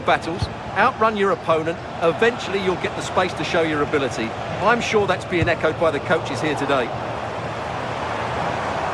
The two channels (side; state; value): both; identical; correlation 1.00